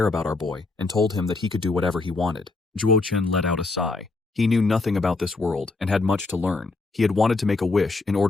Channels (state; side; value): quieter; right; 3.5 dB